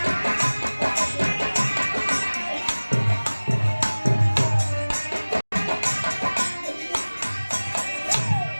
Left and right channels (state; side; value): inverted; both; correlation -1.00